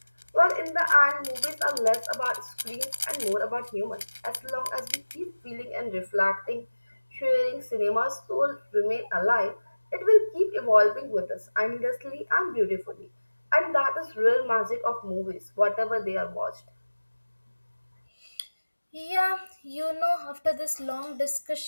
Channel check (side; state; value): both; inverted; correlation -1.00